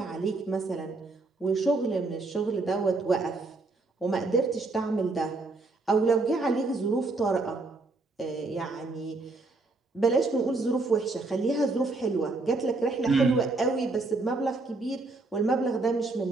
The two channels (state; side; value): quieter; left; 3.4 dB